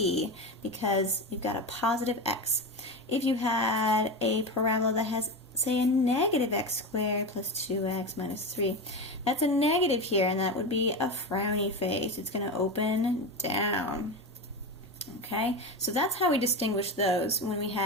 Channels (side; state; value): both; normal; correlation 0.20